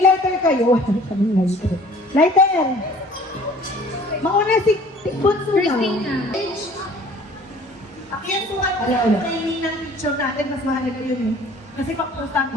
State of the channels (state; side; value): normal; both; correlation 0.50